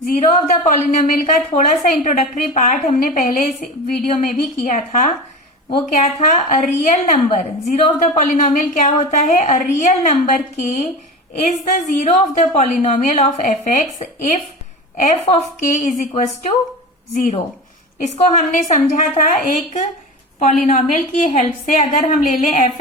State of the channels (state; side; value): normal; both; correlation 0.29